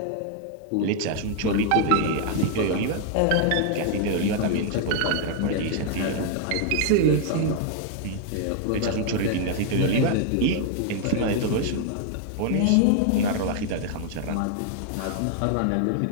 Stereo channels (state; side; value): different; both; correlation 0.00